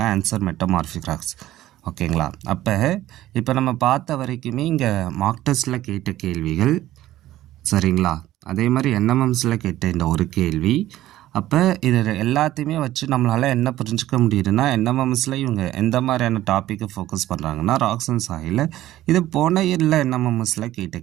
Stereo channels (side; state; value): left; quieter; 14.5 dB